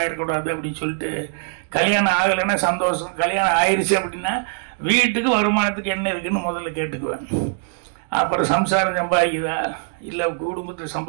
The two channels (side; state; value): left; silent; 64 dB below the other